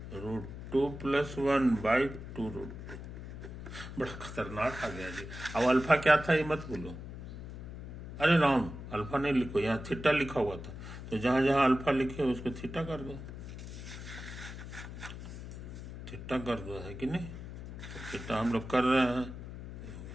+ 1/2√2। बड़ा खतरनाक आ गया जी। अब अल्फा क्या था ये मत भूलो। अरे राम, अल्फा नहीं लिखो, यहाँ थीटा लिखा हुआ था, तो जहां जहां अल्फा लिखे उसको थीटा कर दो, है कि नहीं? तो थीटा हम लोग कर रहे हैं,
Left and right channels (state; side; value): noise; left; hum, 10 dB below the sound